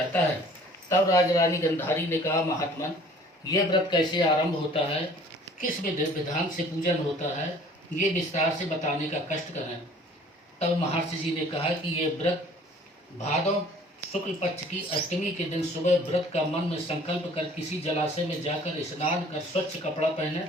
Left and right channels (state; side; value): normal; both; correlation 0.52